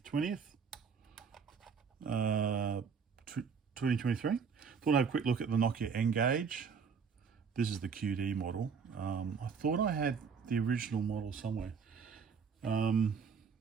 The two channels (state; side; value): quieter; left; 6.0 dB